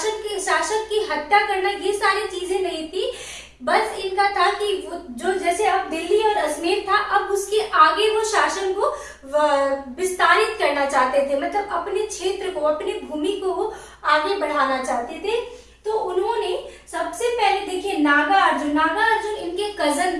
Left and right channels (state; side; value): identical; both; correlation 1.00